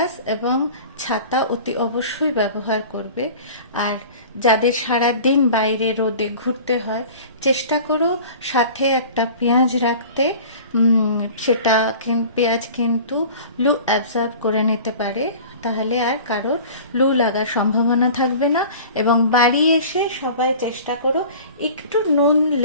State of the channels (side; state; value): both; inverted; correlation -0.41